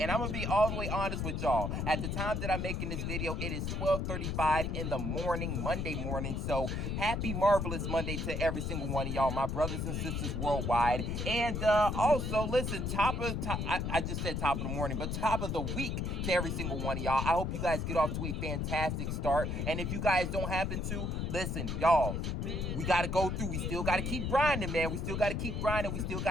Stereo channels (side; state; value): left; noise; rumble, 1 dB below the sound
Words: I'm going to be all the way honest with y'all. At the time that I'm making this video, it is 12:35 in the morning, Monday morning. So happy marvelous Monday to every single one of y'all, my brothers and sisters worldwide. And also, listen, I just said top of the morning, but top of the week to every single one of y'all. I hope you guys get off to a fantastic start. And if you guys don't happen to, listen, y'all, we got to go through. We still got to keep grinding, man. We still got to keep grinding. We still